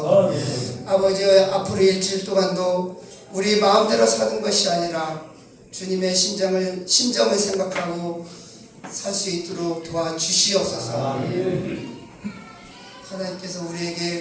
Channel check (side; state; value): both; identical; correlation 1.00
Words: 아버지 앞으로 일주일 동안도 우리 마음대로 사는 것이 아니라 주님의 심정을 생각하고 살 수 있도록 도와주시옵소서. 하나님께서